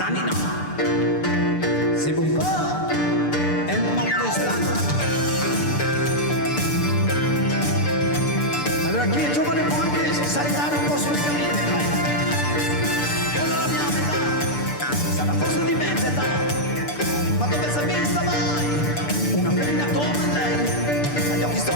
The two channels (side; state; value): right; late; 6.8 ms